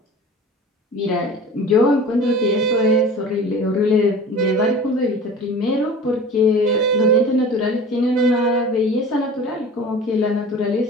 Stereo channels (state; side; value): normal; both; correlation 0.39